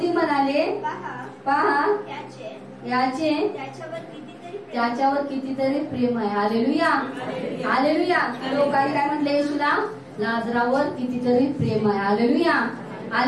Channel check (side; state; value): both; identical; correlation 1.00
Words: म्हणाले, पहा याचे त्याच्यावर कितीतरी प्रेम आहे. Hallelujah, hallelujah. लोकांनी काय म्हटलं येशूला? लाजरावर कितीतरी प्रेम आहे. Hallelujah,